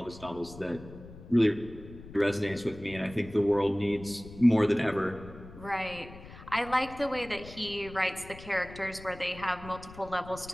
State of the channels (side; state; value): left; noise; rumble, 16 dB below the sound